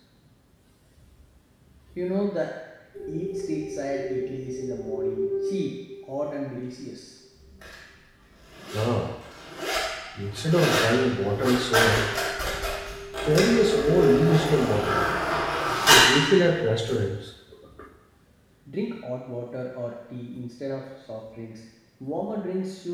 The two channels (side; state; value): both; identical; correlation 1.00